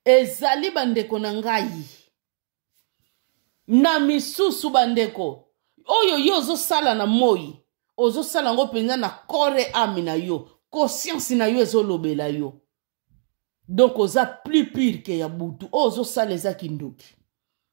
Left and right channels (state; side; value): silent; left; digital silence